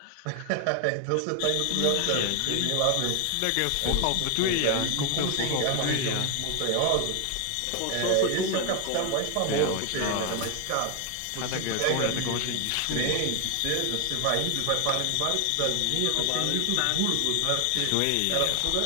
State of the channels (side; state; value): both; different; correlation 0.00